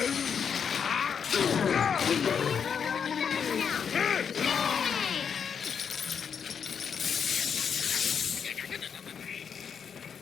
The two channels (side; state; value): right; quieter; 7.1 dB